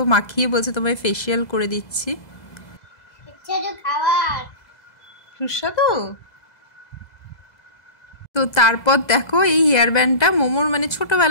মাখিয়ে বলছে তোমায় ফেশিয়াল করে দিচ্ছি। সুস্বাদু। তো তারপর দেখো এই হেয়ার ব্যান্ডটা মোমোর মানে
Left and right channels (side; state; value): right; late; 2.0 ms